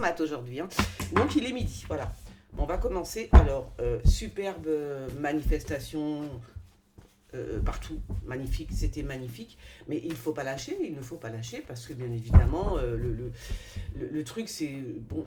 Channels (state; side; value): identical; both; correlation 1.00